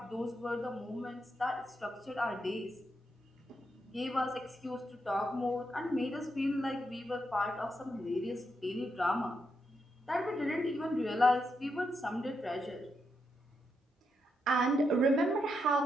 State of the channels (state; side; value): normal; both; correlation 0.82